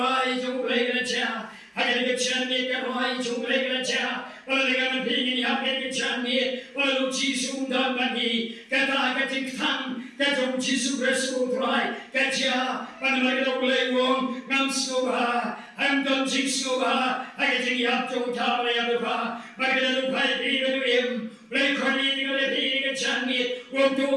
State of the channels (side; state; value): both; identical; correlation 1.00